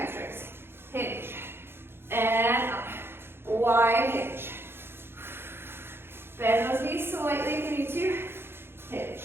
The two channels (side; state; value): left; late; 0.11 ms